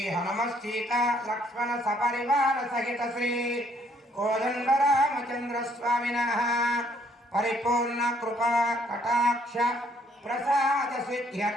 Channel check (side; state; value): both; normal; correlation 0.65